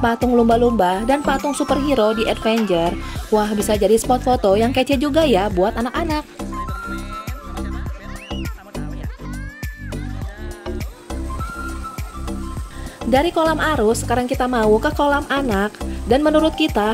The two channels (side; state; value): both; identical; correlation 1.00